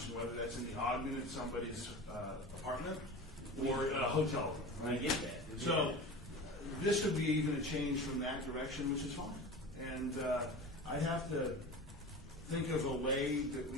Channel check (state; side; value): normal; both; correlation 0.33